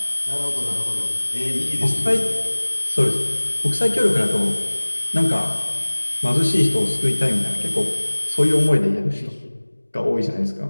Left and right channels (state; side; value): inverted; both; correlation -1.00